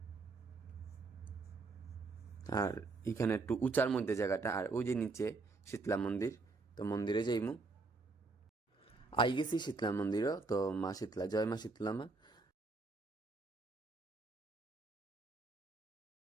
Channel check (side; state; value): left; quieter; 3.8 dB